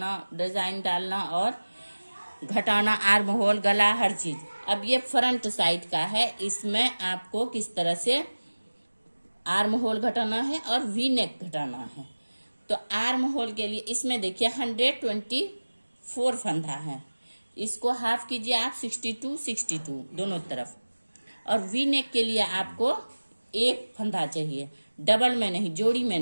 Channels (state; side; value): inverted; both; correlation -1.00